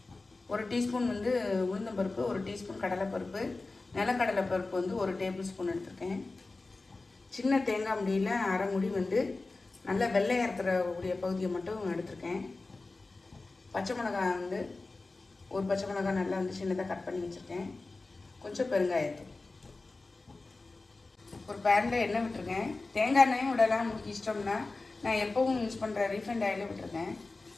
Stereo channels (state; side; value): quieter; right; 3.4 dB